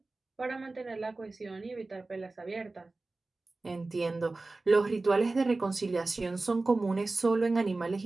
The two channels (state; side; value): quieter; left; 3.3 dB